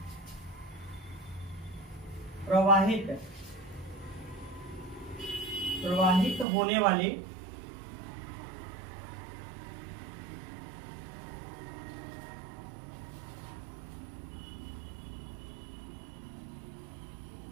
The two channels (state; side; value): drops out; left; at 6.5 s